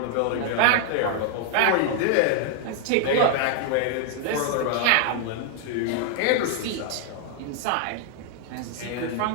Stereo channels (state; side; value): different; both; correlation 0.00